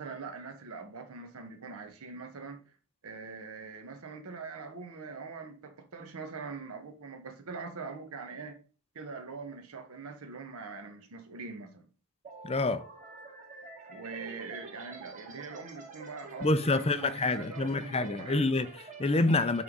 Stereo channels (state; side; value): normal; both; correlation 0.37